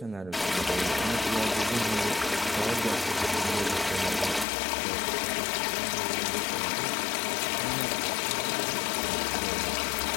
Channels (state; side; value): drops out; right; at 4.5 s